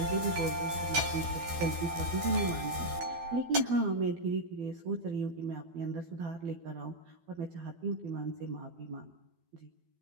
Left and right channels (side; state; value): left; late; 12 ms